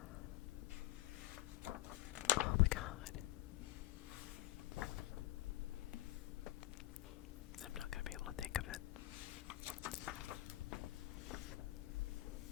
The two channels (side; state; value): right; quieter; 16.6 dB